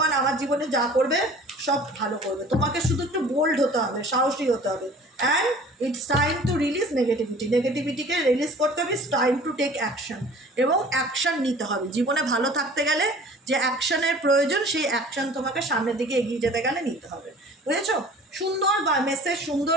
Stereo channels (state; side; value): normal; both; correlation 0.47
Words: আমার জীবনে যা করবে সব ভালো করবে। তোমাকে শুধু একটু বোল্ড হতে হবে, সাহসী হতে হবে। And it's time to release নেগেটিভিটিকে রিলিজ করতে হবে। It's time to take action, এবং অ্যাকশন নিতে হবে। জীবনে ভালো থাকতে গেলে যে অ্যাকশনের প্রয়োজন, সেই অ্যাকশন তোমাকে সামনের দিকে এগিয়ে যেতে গেলে নিতে হবে। বুঝেছো? সুন্দর মেসেজ, সুন্দর